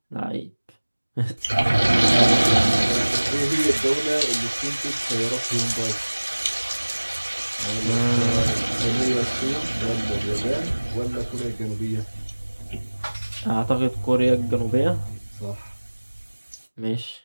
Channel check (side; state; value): both; inverted; correlation -1.00